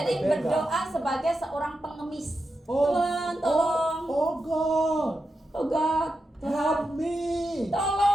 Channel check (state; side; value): normal; both; correlation 0.88